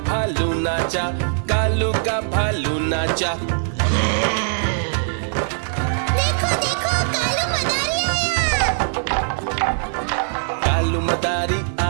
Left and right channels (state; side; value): silent; left; digital silence